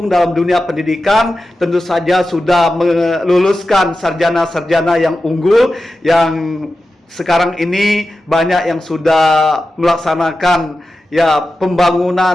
dalam dunia pendidikan, tentu saja sudah meluluskan sarjana-sarjana yang unggul, yang sekarang ini banyak yang sudah melaksanakan ya pembangunan,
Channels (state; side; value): normal; both; correlation 0.92